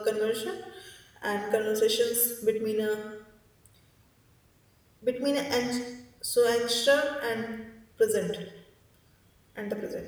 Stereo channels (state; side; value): identical; both; correlation 1.00